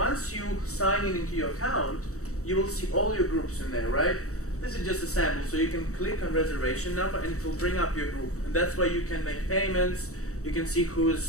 you sign in into your account, you will see all your groups in there, right? This is just a sample, so you can click on reservation number and it will bring up your group. And that's why you can make payments, you can see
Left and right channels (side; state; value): right; late; 0.65 ms